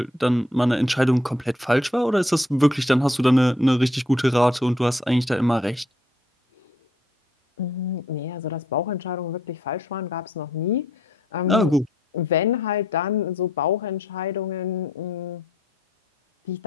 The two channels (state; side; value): normal; both; correlation 0.68